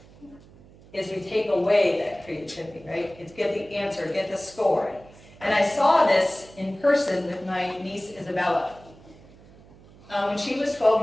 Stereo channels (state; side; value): noise; right; hum, 23 dB below the sound